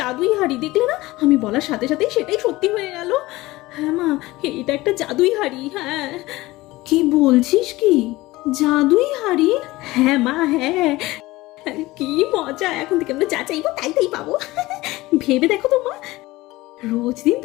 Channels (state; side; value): quieter; right; 19.2 dB